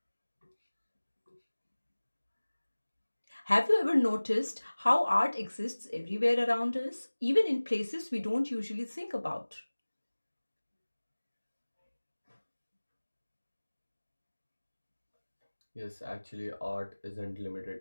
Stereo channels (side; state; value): both; inverted; correlation -1.00